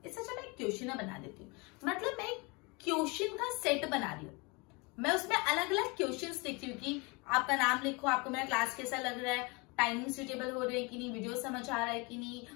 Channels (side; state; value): right; quieter; 28.3 dB